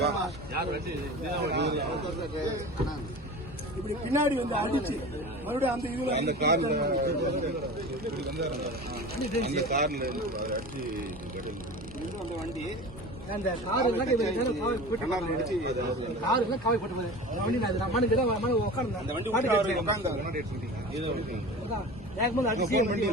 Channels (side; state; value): both; normal; correlation 0.34